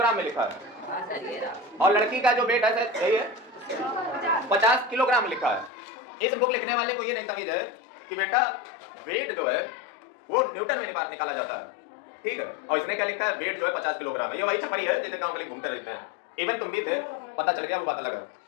में लिखा है। हाँ सर ये रहा। और लड़की का जो वेट है सर यही है 50 किलोग्राम लिखा है। इस बुक लिखने वाले को ये नहीं तमीज है कि बेटा वेट जो है वो न्यूटन में निकाला जाता है, ठीक है। और इसने क्या लिखा है, वेट जो है 50 किलोग्राम है। ये वही छपरी है जैसे गांव के लिए घूमते रहते हैं। इवन तुम भी थे, पता चल गया, वो बात अलग है।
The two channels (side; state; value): right; drops out; at 5.7 s